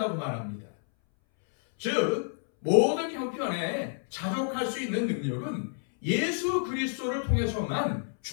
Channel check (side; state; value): right; silent; 58 dB below the other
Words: 말합니다. 즉 모든 형편에 자족할 수 있는 능력은 예수 그리스도를 통해서만